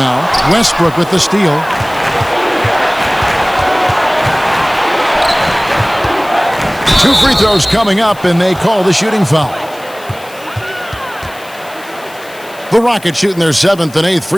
Westbrook with the steal. Two free throws coming up, and they call the shooting foul. The Rockets shooting their 7th and 8th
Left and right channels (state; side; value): noise; left; hiss, 21 dB below the sound